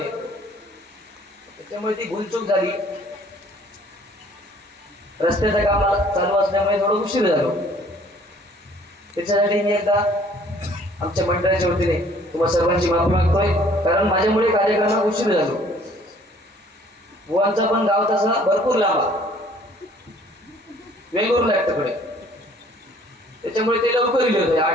त्याच्यामुळे ती भूलचूक झाली. रस्त्याचं काम चालू असल्यामुळे थोडं उशीर झालो. त्याच्यासाठी मी एकदा आमच्या मंडळाच्या वतीने तुम्हाला सर्वांची माफी मागतोय, कारण माझ्यामुळे कार्यक्रमाला उशीर झालो. बुवांचा पण गाव तसा भरपूर लांब वेगळूर लागतं, त्याच्यामुळे ते लवकर गेले होते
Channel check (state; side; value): normal; both; correlation 0.57